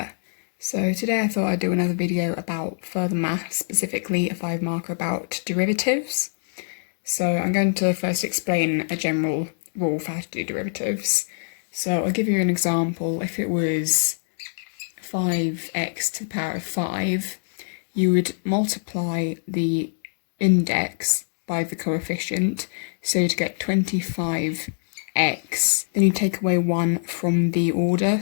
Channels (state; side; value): silent; right; digital silence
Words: So today I thought I'd do another video about further maths, specifically a 5 marker about derivatives. So I'm going to first explain a general rule for how to do derivatives. So I'll give you an example. If it was 5x to the power of 5, you would multiply the index by the coefficient, so you'd get 25x. Then you take away 1 from the order,